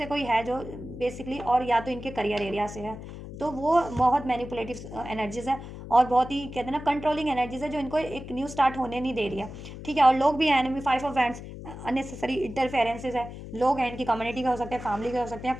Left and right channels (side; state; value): left; noise; hum, 12 dB below the sound